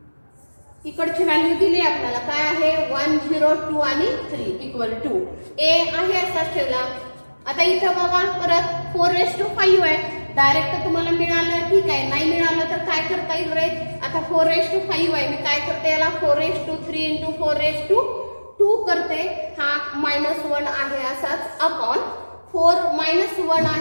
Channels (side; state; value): both; inverted; correlation -1.00